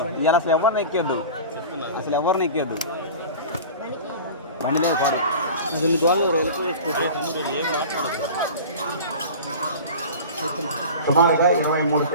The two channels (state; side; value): inverted; both; correlation -0.36